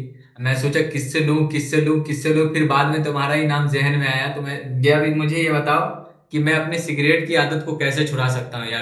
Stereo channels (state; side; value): identical; both; correlation 1.00